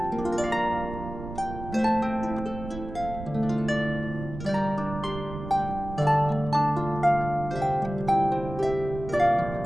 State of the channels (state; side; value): noise; right; rumble, 10 dB below the sound